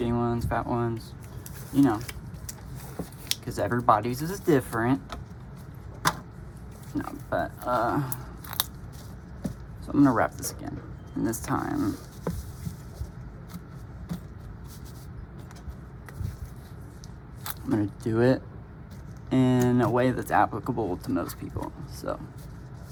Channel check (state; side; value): identical; both; correlation 1.00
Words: ones, fat ones, you know, because everybody's is different. No, but so I'm gonna wrap this again. And this time, I'm gonna do it in a way that's applicable to most people.